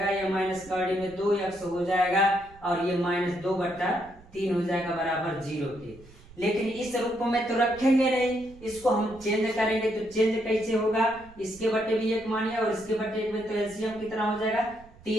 यह माइनस करड़ी में 2x हो जाएगा और ये -2/3 हो जाएगा, बराबर 0 के। लेकिन इस रूप में तो रखेंगे नहीं, इसको हम चेंज करेंगे, तो चेंज कैसे होगा, इसके बटे भी 1 मानिए और इसके बटे 1 में, तो एलसीएम कितना हो जाएगा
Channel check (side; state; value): right; noise; rumble, 23 dB below the sound